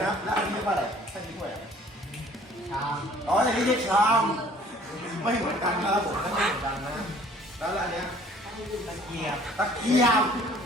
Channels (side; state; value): both; normal; correlation 0.54